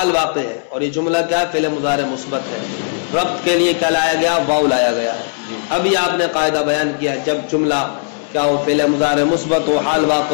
واقع ہے، اور یہ جملہ کیا ہے؟ فعل مضارع مثبت ہے۔ ربط کے لیے کیا لایا گیا؟ واو لایا گیا۔ ابھی آپ نے قاعدہ بیان کیا، جب جملہ کیا ہو، فعل مضارع مثبت ہو، حال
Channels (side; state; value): right; silent; 66 dB below the other